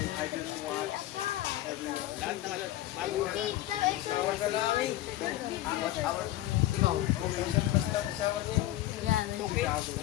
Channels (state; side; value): quieter; right; 15.1 dB